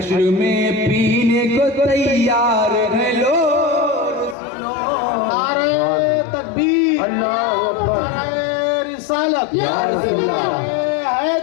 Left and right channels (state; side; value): drops out; right; at 4.4 s